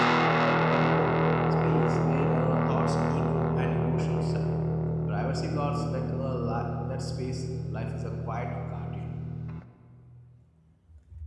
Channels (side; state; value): both; identical; correlation 1.00